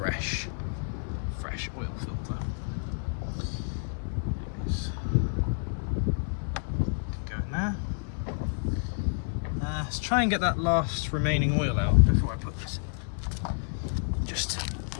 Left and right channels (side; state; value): right; silent; digital silence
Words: oil filter? Go in there. Let's try and get that last remaining oil out before I put this in. Just,